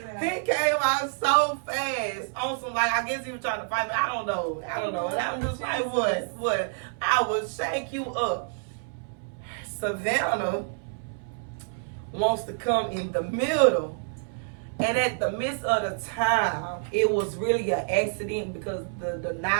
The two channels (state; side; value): silent; left; 59 dB below the other